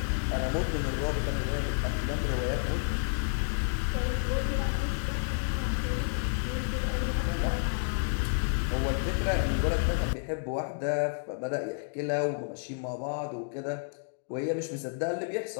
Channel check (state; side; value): silent; right; digital silence